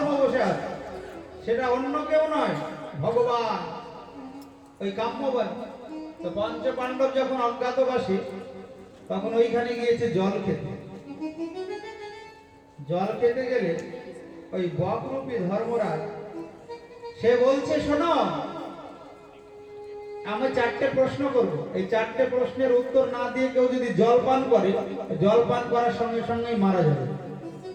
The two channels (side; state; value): both; identical; correlation 1.00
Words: বসে আছে। সেটা অন্য কেউ নয়, ভগবান। ওই কাম্যবন। তো পঞ্চ পাণ্ডব যখন অজ্ঞাতবাসী, তখন ওইখানে গিয়েছে জল খেতে। জল খেতে গেলে ওই বকরূপী ধর্মরাজ সে বলছে, শোনো, আমি 4টে প্রশ্ন করব। এই 4টে প্রশ্নের উত্তর না দিয়ে কেউ যদি জল পান করে, জল পান করার সঙ্গে সঙ্গেই মারা যাবে।